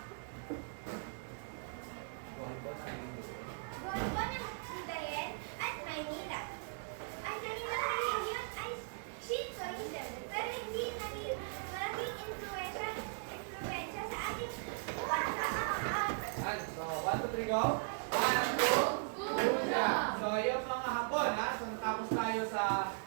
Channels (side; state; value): left; silent; digital silence